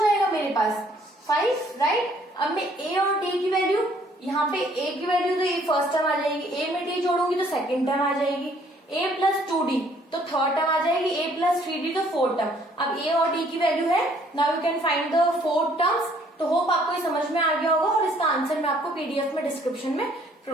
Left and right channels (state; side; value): normal; both; correlation 0.62